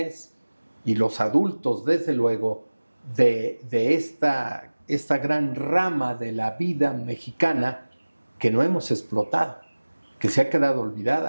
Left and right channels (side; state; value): both; inverted; correlation -1.00